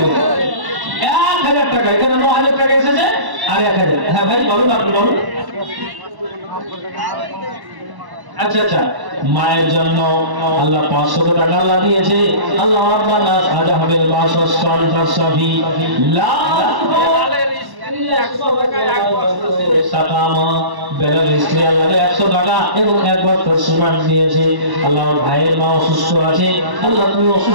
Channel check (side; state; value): left; late; 1.1 ms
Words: 1000 1000 টাকা, এখানে 9000 টাকা এসেছে আর 1000। হ্যাঁ ভাই বলুন, আপনি বলুন। আচ্ছা আচ্ছা, মায়ের জন্য আল্লাহ 500 টাকা আল্লাহ দিয়েছে। আল্লাহ রাব্বানা আজাহাবেল মাসস ফানফাসফি লা এবং 1 বছর সিমেন্ট দিয়েছে। আল্লাহ ভাইয়ের মা অসুস্থ আছে, আল্লাহ তুমি